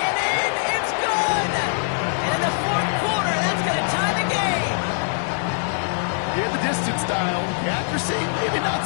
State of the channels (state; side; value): silent; right; digital silence